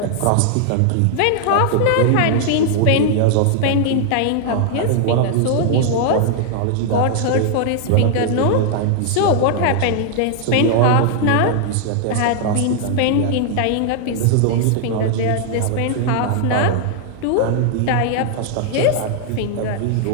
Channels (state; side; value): different; both; correlation -0.01